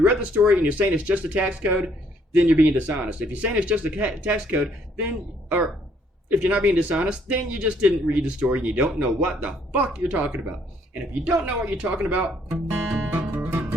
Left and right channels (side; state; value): both; normal; correlation 0.66